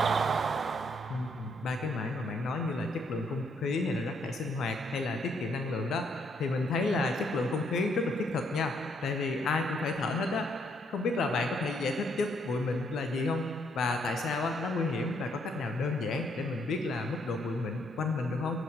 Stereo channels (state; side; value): normal; both; correlation 0.72